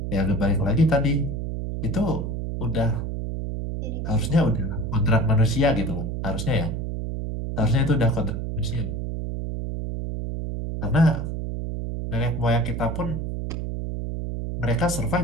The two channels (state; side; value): noise; right; hum, 3 dB below the sound